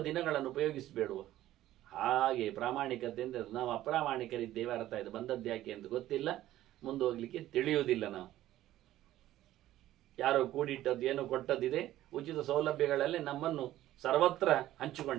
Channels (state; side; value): quieter; left; 14.1 dB